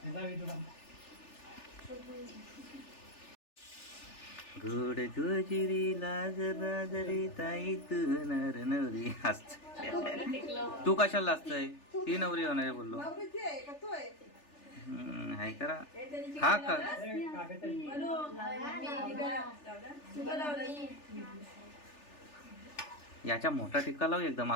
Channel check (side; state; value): right; late; 3.4 ms